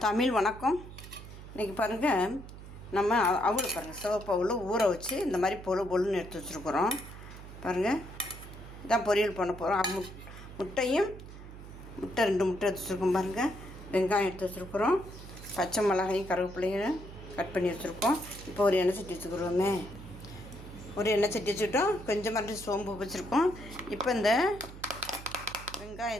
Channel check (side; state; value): right; noise; hum, 14 dB below the sound